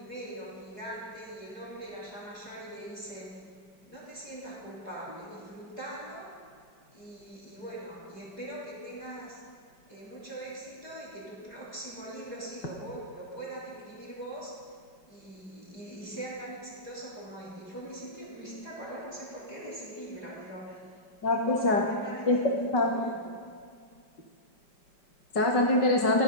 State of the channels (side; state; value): right; late; 5.1 ms